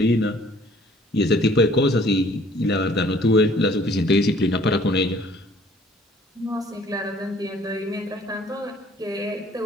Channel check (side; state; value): both; normal; correlation 0.56